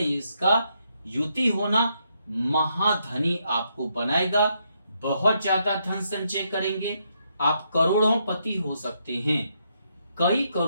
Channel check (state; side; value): inverted; both; correlation -0.77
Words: इसका युति होना महाधनी आपको बनाएगा। बहुत ज्यादा धन संचय करेंगे, आप करोड़ों पति हो सकते हैं, कई